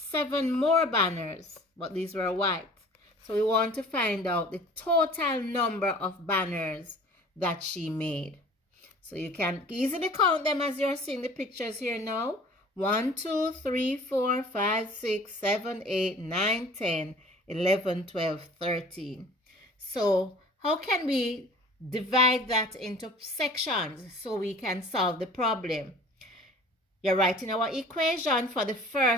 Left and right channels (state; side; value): normal; both; correlation 0.47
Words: more banners, but these were white. So we want to find out the total number of banners that she made. So you can easily count them as you're seeing the pictures here now. 1, 2, 3, 4, 5, 6, 7, 8, 9, 10, 11, 12, 13. So how can we divide that into sections so we can solve the problem? You're writing our equation for the